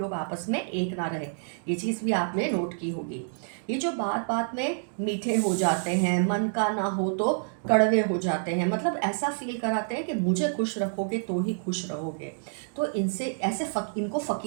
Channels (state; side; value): silent; left; digital silence